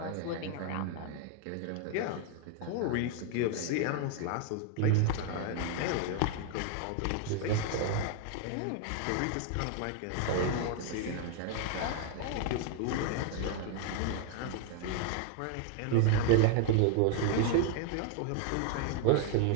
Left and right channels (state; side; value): different; both; correlation 0.00